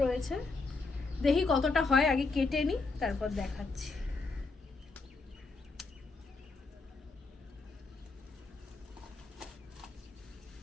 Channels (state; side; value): quieter; right; 3.9 dB